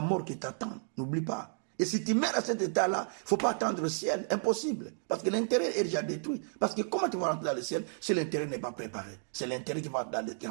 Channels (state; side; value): silent; left; digital silence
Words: mort qui t'attend. N'oublie pas. Et si tu mets à cet état-là, il ne faut pas attendre le ciel. Impossible. Parce que l'intérieur est déjà détruit. Parce que comment tu vas rentrer dans le ciel si l'intérieur n'est pas préparé? C'est l'intérieur qui